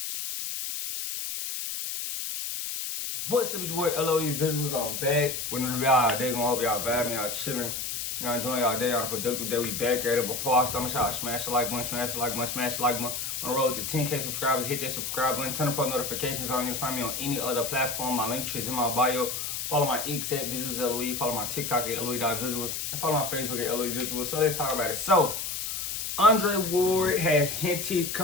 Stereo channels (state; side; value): noise; left; hiss, 4 dB below the sound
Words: What's up, it's your boy LOE Visuals. I'm back with another video all day. Gonna hope y'all vibing, y'all chilling, y'all enjoying y'all day on a productive day. We back at it. Before I start, make sure y'all smash the like button, smash the like button, smash the like button. On the road to 10K subscribers, hit that subscribe button, turn on post notifications on. You can find me on any other platform. My link tree is in my bio. Follow my X at Visuals LOE. Follow my TikTok at LOE.Visuals. And follow my Facebook at LOE Visuals. So let's talk about it. So, Andre Ward has hinted